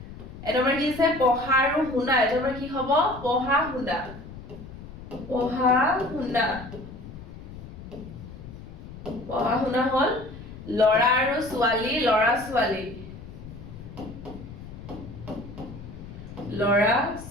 এটা আমাৰ কি আছে? পঢ়া আৰু শুনা। এটা আমাৰ কি হ'ব? পঢ়া শুনা। পঢ়া শুনা হ'ল ল'ৰা আৰু ছোৱালী, ল'ৰা ছোৱালী।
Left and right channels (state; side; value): noise; left; rumble, 14 dB below the sound